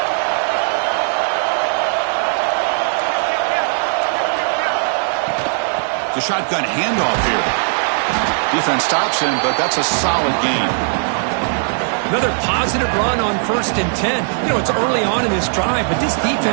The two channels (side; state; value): left; silent; digital silence